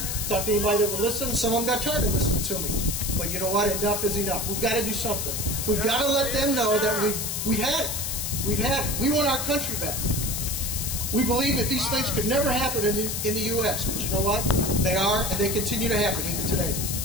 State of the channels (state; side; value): noise; left; hiss, 2 dB below the sound